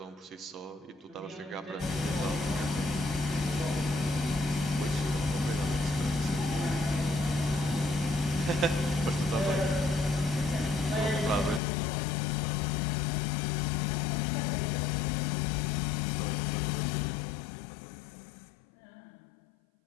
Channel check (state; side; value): drops out; right; at 11.6 s